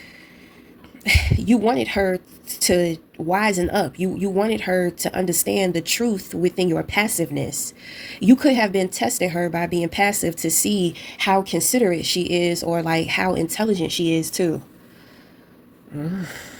wisen up. You wanted her to understand the truth within your passiveness. You could have been testing her by being passive to see how considerate she is or like how intelligent she is too.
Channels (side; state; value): both; identical; correlation 1.00